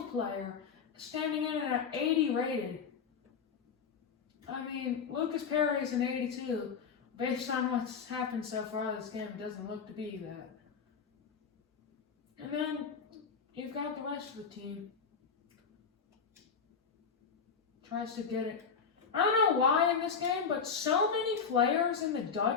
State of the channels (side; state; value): right; quieter; 6.0 dB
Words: player, standing in at an 80 rated. I mean, Lucas Perry is an 82. Based on what's happened so far this game, it doesn't look to be that. And then you've got the rest of the team. Tries to get it. I don't know why in this game, but so many players in the